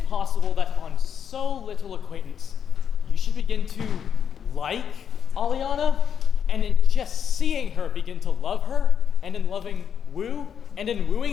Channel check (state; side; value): quieter; right; 8.0 dB